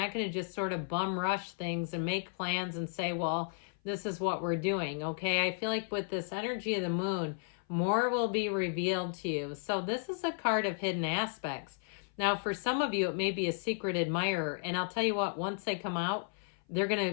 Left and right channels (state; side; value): silent; right; 55 dB below the other